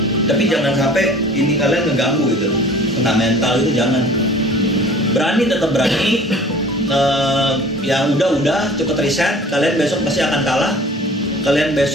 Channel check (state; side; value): normal; both; correlation 0.46